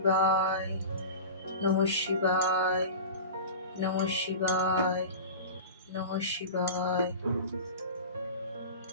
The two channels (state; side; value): inverted; both; correlation -0.32